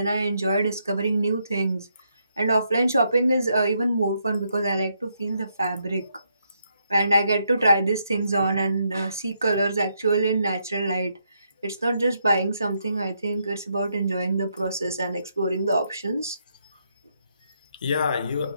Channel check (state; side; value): inverted; both; correlation -0.77